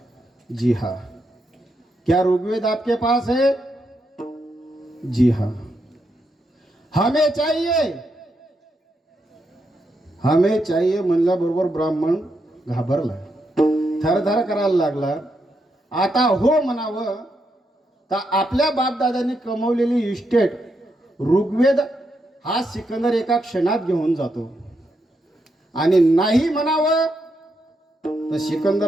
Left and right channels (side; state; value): both; normal; correlation 0.82